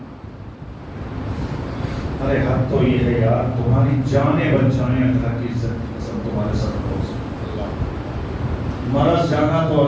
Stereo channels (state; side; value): identical; both; correlation 1.00